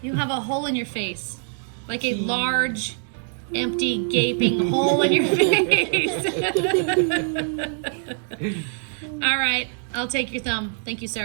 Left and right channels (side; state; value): left; silent; 63 dB below the other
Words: You have a hole in your face, like a large, empty, gaping hole in your face. All right, I'll take your thumb. Thank you,